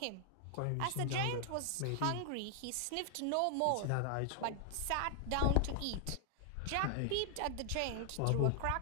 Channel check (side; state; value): both; different; correlation 0.00